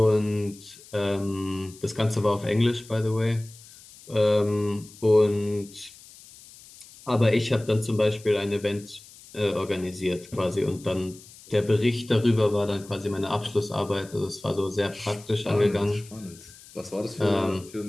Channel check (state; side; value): noise; left; hiss, 21 dB below the sound